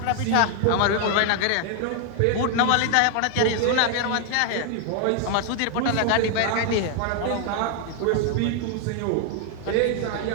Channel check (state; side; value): different; both; correlation 0.00